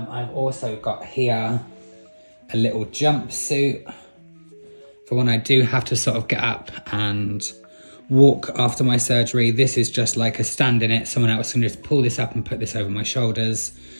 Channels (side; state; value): both; inverted; correlation -1.00